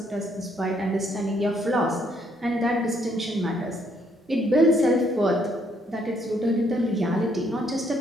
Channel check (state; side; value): normal; both; correlation 0.69